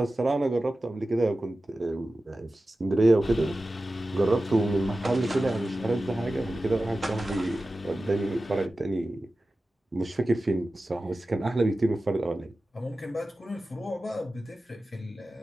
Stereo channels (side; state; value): both; normal; correlation 0.95